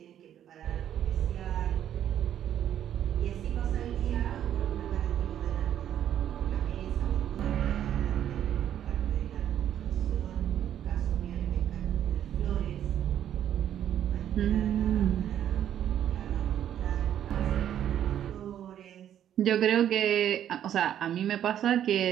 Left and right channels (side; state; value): left; quieter; 10.4 dB